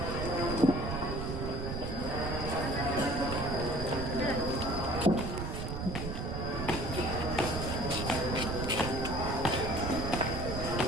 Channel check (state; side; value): noise; right; rumble, 4 dB below the sound